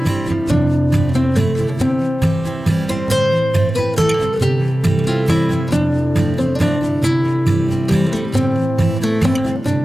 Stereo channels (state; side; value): normal; both; correlation 0.95